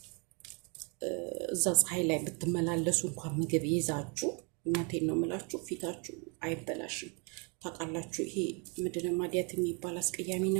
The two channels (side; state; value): left; quieter; 33.6 dB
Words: እዛ ፀሐይ ላይ ብትመላለሱ እንኳን ምግብ ይዛችሁ እናቴን ነው የምላችሁ ፊታችሁ አይበላሽም። ታውቃላችሁ ይሄ ምንድነው ማዲያት የሚባል አስቀያሚ